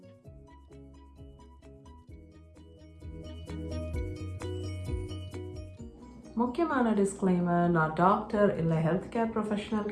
முக்கியமான டிஸ்க்ளைமர், நான் டாக்டர் இல்லை ஹெல்த் கேர் ப்ரொஃபஷனல்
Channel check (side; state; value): both; identical; correlation 1.00